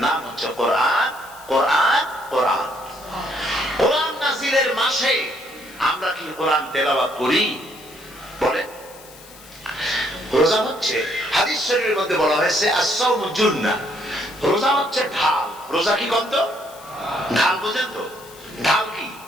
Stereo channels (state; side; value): noise; left; hiss, 21 dB below the sound